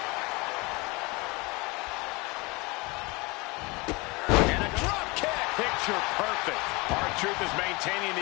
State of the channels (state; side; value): quieter; right; 25.6 dB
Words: Picture perfect. R-Truth is maintaining